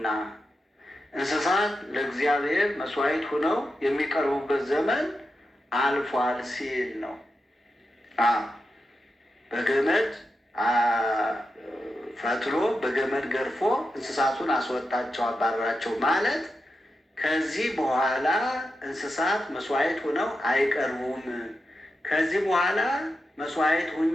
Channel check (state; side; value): normal; both; correlation 0.89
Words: እንስሳት ለእግዚአብሔር መስዋዕት ሆነው የሚቀርቡበት ዘመን አልፏል ሲል ነው። በገመድ ፈትሎ በገመድ ገርፎ እንስሳቱን አስወጣቸው፣ አባረራቸው ማለት ከዚህ በኋላ እንስሳት መስዋዕት ሆነው አይቀርቡም። ከዚህ በኋላ መስዋዕት